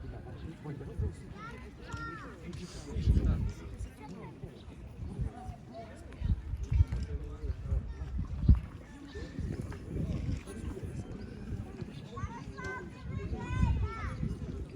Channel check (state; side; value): identical; both; correlation 1.00